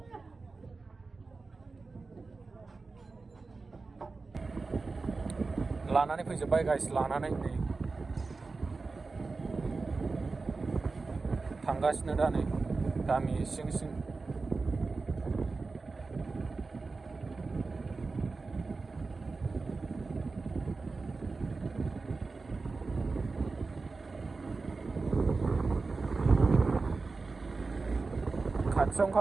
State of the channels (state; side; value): quieter; left; 4.0 dB